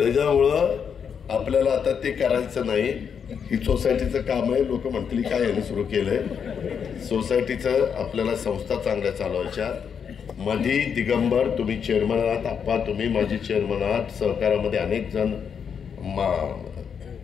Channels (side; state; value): right; quieter; 7.1 dB